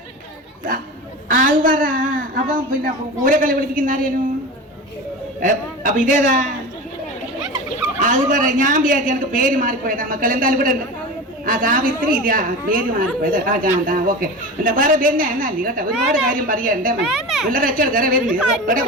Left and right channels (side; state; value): both; normal; correlation 0.29